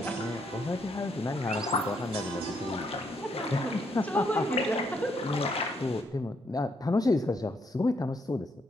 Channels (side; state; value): both; normal; correlation 0.74